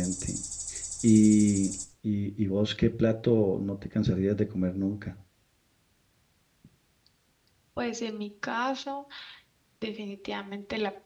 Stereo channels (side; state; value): both; identical; correlation 1.00